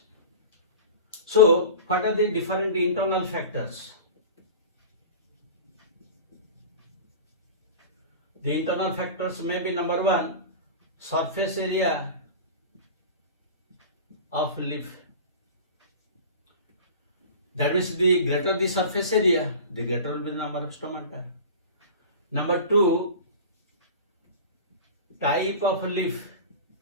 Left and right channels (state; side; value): inverted; both; correlation -0.35